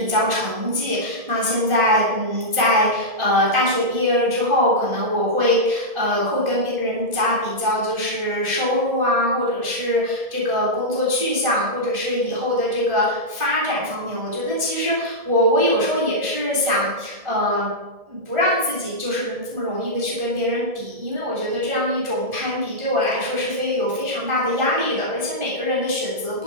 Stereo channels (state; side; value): late; left; 1.7 ms